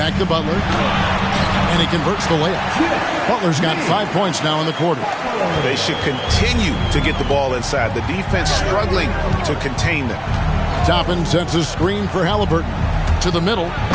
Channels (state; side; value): identical; both; correlation 1.00